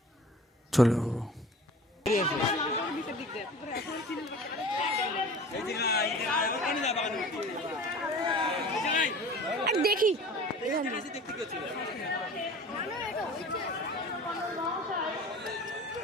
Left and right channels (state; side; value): normal; both; correlation 0.41